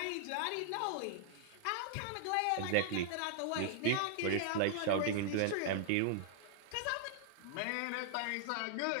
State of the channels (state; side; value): different; both; correlation -0.01